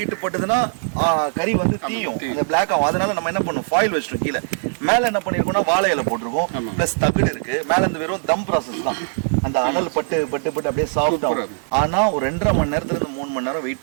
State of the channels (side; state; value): left; silent; digital silence